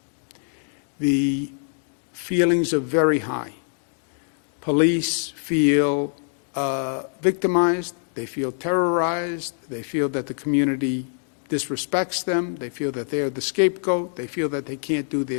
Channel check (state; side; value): silent; right; digital silence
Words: The feelings are very high. Police feel victimized, they feel terrorized, they feel that the community disrespects them, they feel that they are the scapegoat, they feel that they can't do